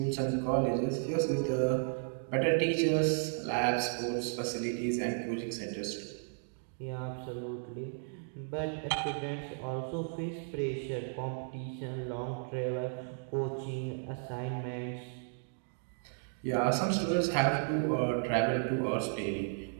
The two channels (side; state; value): left; silent; digital silence